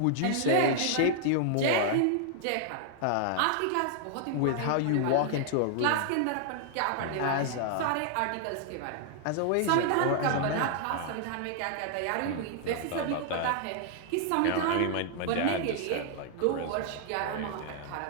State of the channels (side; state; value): both; different; correlation 0.00